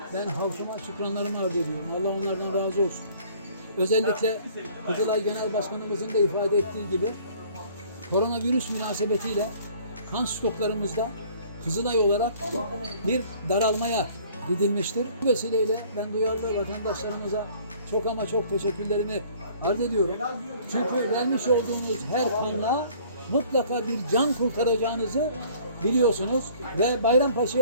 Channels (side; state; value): both; inverted; correlation -0.54